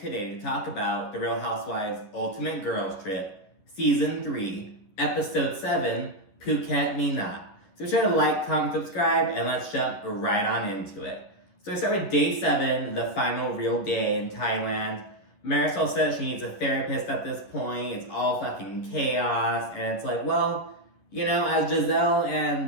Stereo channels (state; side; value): late; right; 11 ms